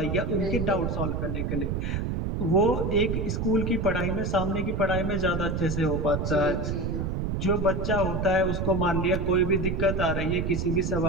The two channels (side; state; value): right; noise; rumble, 1 dB below the sound